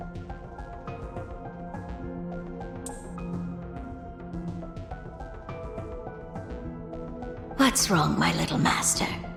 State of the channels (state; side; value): identical; both; correlation 1.00